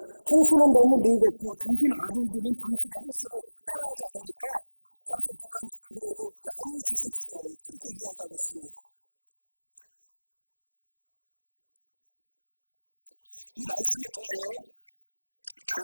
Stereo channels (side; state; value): both; inverted; correlation -1.00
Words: 당신은 너무 늙었고 당신 아들들은 당신의 행실을 따라하지 않으니까 당신 그만두고 우리에게 왕을 주십시오. 그렇게 이야기하고 있습니다. 이 말씀을 통하여